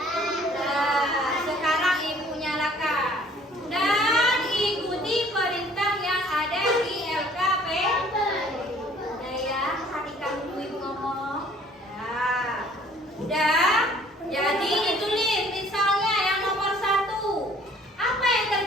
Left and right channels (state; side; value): normal; both; correlation 0.56